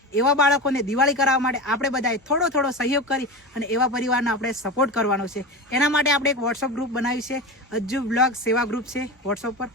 એવા બાળકોને દિવાળી કરાવવા માટે આપણે બધાએ થોડો થોડો સહયોગ કરી અને એવા પરિવારનો આપણે સપોર્ટ કરવાનો છે। એના માટે આપણે એક વોટ્સઅપ ગ્રુપ બનાવ્યું છે, અજ્જુ બ્લોગ સેવા ગ્રુપ છે વોટ્સઅપ પર,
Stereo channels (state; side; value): normal; both; correlation 0.25